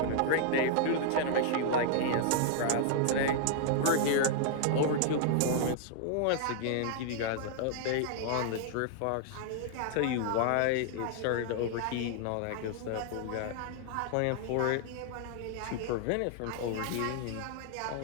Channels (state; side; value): different; both; correlation -0.01